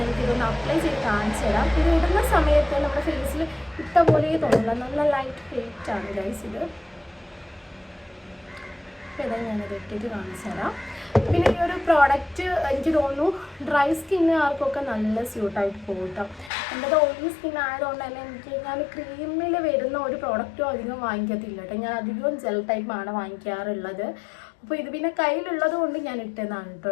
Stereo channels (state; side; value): drops out; right; at 16.5 s